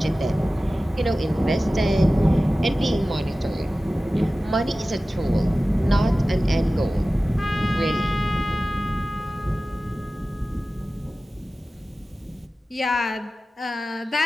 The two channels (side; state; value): both; normal; correlation 0.96